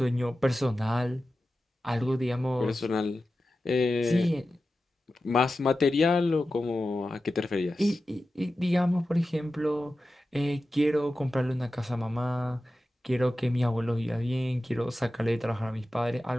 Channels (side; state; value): both; normal; correlation 0.93